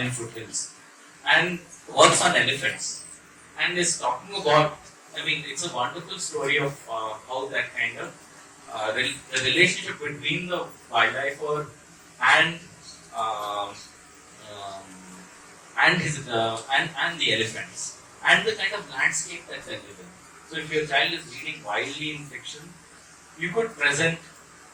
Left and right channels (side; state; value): both; identical; correlation 1.00